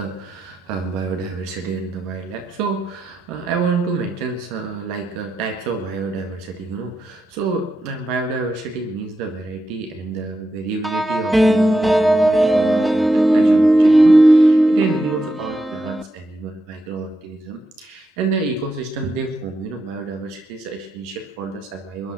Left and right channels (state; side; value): normal; both; correlation 0.86